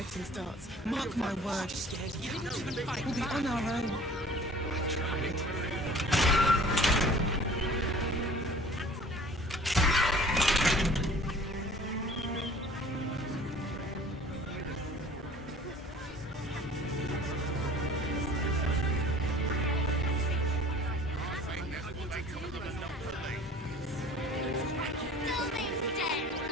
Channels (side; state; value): both; normal; correlation 0.48